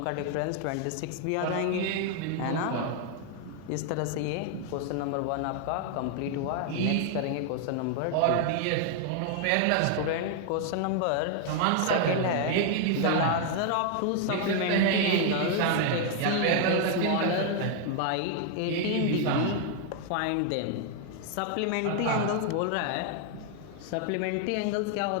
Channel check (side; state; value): both; different; correlation 0.00